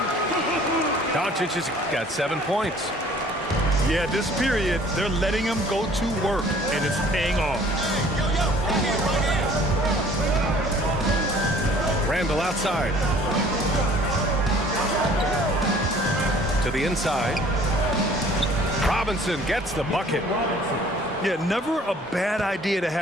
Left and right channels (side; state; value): both; normal; correlation 0.53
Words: Doncic has got 7 points. Yeah, this period, they're letting him go to work, and it's paying off. Randall outside. To the inside. Robinson gets the bucket. Yeah, never a bad idea to